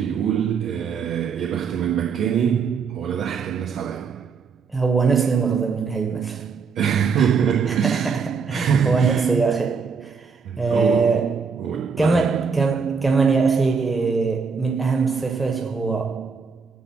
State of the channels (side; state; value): left; quieter; 5.6 dB